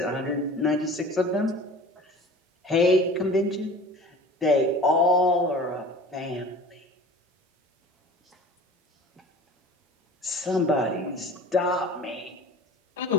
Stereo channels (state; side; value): normal; both; correlation 0.42